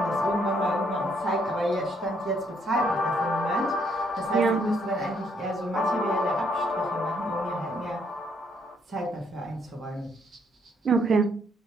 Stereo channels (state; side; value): normal; both; correlation 0.71